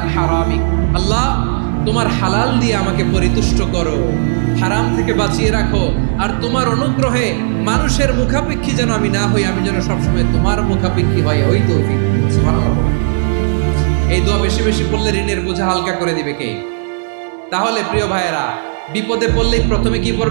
হারামিক, আল্লাহ তোমার হালাল দিয়ে আমাকে পরিতুষ্ট করো, হারাম থেকে বাঁচিয়ে রাখো, আর তোমার অনুগ্রহে মানুষের মুখাপেক্ষী যেন আমি না হই, আমি যেন সবসময় তোমার মুখাপেক্ষী হই, ওই তৌফিক দিও। সুবহানাল্লাহ। এই দোয়া বেশি বেশি পড়লে ঋণের বোঝা হালকা করে দিবে কে? তাহলে প্রিয় ভাইয়েরা, বিপদে পড়লেই প্রথমে কি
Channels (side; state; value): left; silent; digital silence